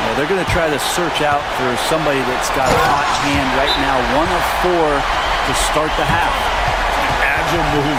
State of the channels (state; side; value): identical; both; correlation 1.00